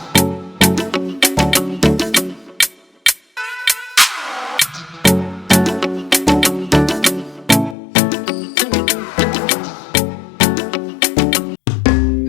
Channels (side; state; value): right; drops out; at 7.8 s